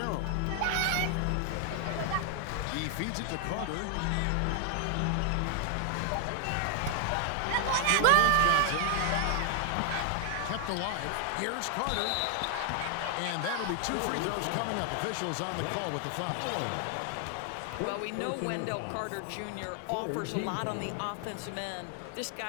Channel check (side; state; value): both; different; correlation 0.00